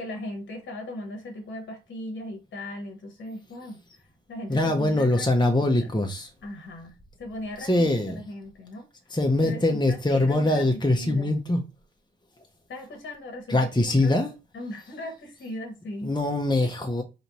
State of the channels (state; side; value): normal; both; correlation 0.78